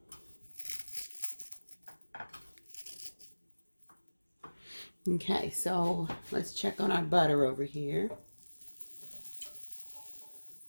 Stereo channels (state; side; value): inverted; both; correlation -1.00